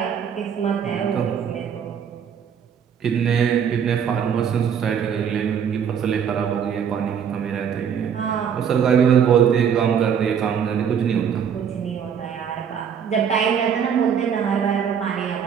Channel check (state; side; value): quieter; left; 7.8 dB